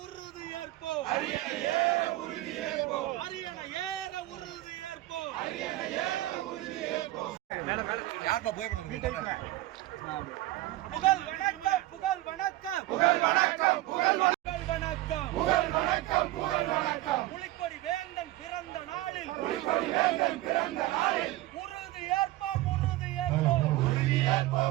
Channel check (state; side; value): quieter; left; 16.9 dB